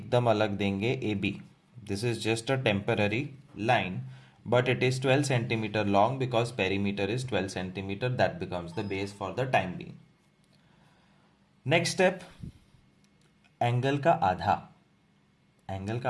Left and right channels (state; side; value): identical; both; correlation 1.00